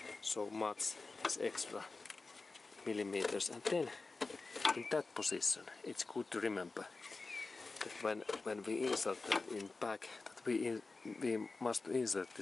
so much this extra millimeters, and then in that position it's good to remember that when we insert that in back, that we must insert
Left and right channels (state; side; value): quieter; right; 3.8 dB